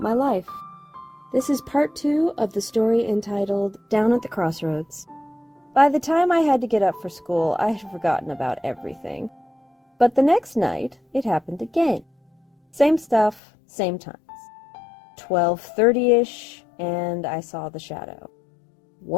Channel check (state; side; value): drops out; right; at 13.4 s